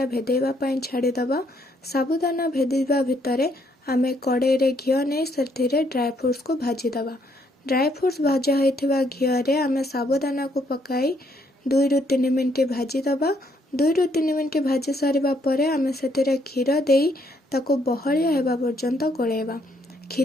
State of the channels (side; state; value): both; normal; correlation 0.70